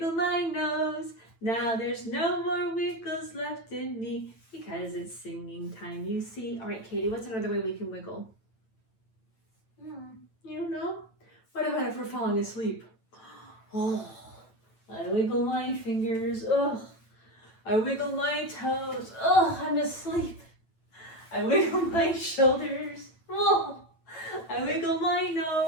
my nose. Now there's no more wiggles left in me because it's singing time, you see. All right, Katie, what's another way we can wiggle? You don't know? What about if we're falling asleep? Oh, I wiggle my fingers. Oh, I wiggle my toes. Oh, I'm asleep. I wiggle my shoulders. Oh, I wiggle my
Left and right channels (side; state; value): right; late; 9.0 ms